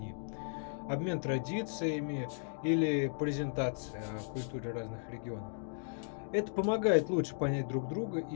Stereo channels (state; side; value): silent; right; digital silence